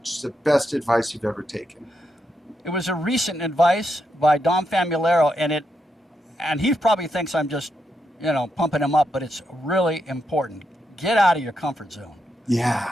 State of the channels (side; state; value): both; normal; correlation 0.83